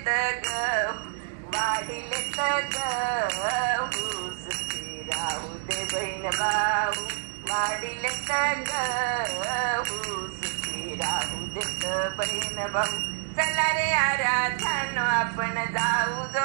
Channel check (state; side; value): silent; left; digital silence